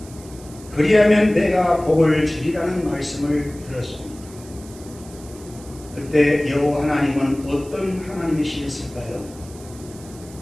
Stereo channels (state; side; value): noise; right; hiss, 20 dB below the sound